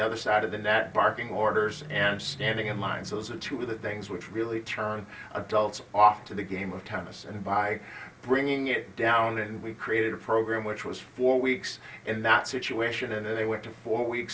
side of the net, barking orders, and standing in line. So those are 2 of the things which really turn adults off to the game of tennis. And by bringing it down, and we created a program which was 4 weeks in that situation, and then they went to 4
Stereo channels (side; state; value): both; identical; correlation 1.00